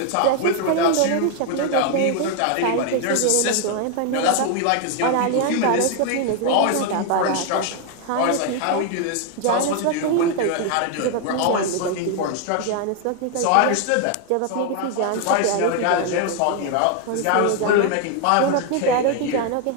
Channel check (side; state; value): both; different; correlation 0.01